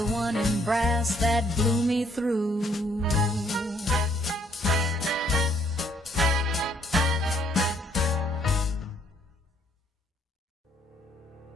one in brass that blew me through.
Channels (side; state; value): both; normal; correlation 0.67